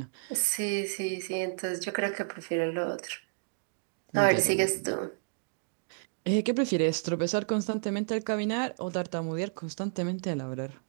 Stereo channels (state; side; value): silent; left; digital silence